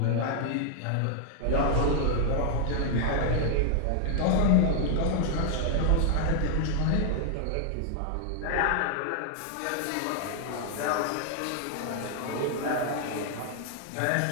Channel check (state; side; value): different; both; correlation 0.00